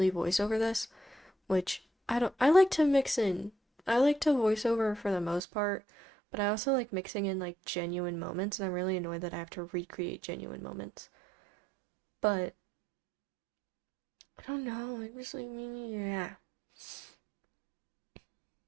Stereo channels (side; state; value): left; drops out; at 5.4 s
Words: voice over this, which I don't, I like to mix in. I like to voice over for the most part, but I also like mixing in like genuine moments, and I'm really annoyed that I have to recreate genuine moments. But I don't know, I just like, yeah.